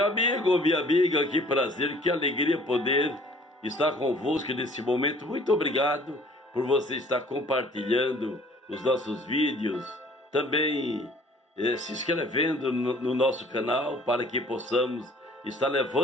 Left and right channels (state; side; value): normal; both; correlation 0.54